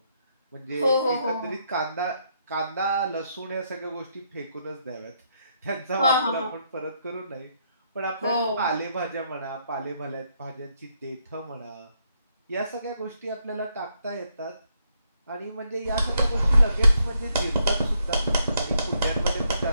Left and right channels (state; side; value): inverted; both; correlation -0.75